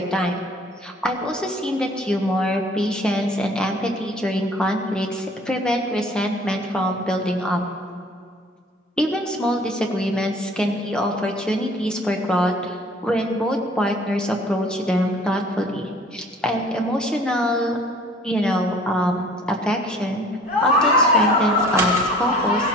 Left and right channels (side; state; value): both; normal; correlation 0.51